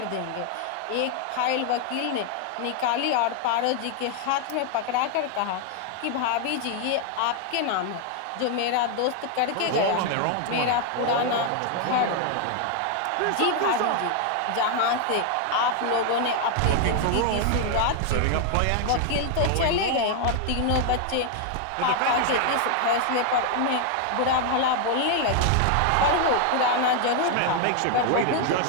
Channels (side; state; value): both; different; correlation 0.00